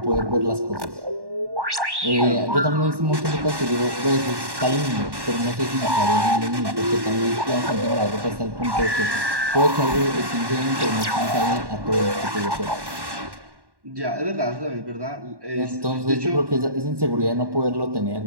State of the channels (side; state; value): left; late; 1.1 ms